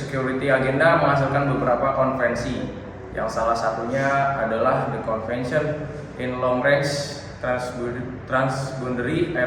Agenda menghasilkan beberapa konvensi, yang salah satunya adalah The Convention in Long Range Transboundary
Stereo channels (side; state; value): both; identical; correlation 1.00